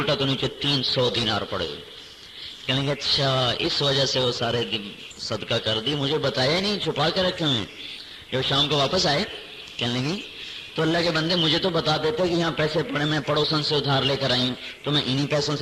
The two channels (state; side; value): identical; both; correlation 1.00